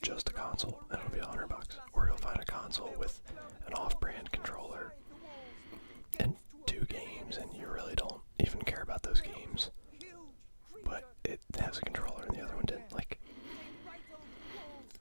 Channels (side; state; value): both; inverted; correlation -1.00